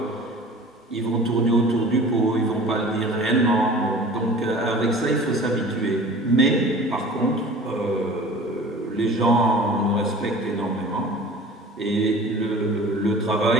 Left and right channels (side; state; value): both; normal; correlation 0.43